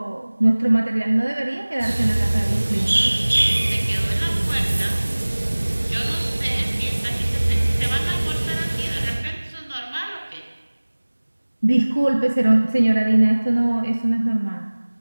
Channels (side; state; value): both; inverted; correlation -1.00